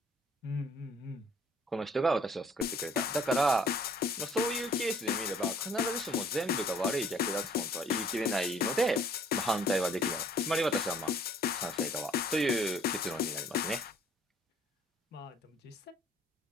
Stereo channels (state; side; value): normal; both; correlation 0.58